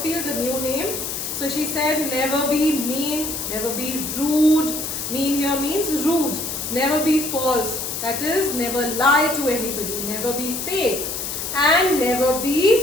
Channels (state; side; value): noise; left; hiss, 4 dB below the sound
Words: the new name. So she said, never be mean, never be rude. Mean here means rude. Never be false. That is, never lie to anybody. Never be fake. And never